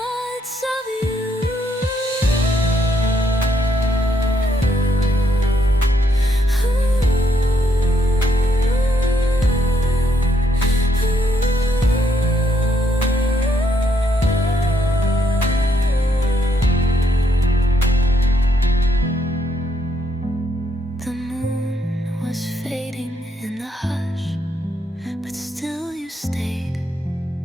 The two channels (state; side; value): normal; both; correlation 0.74